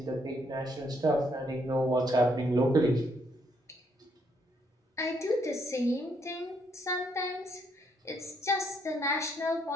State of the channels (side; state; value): both; normal; correlation 0.72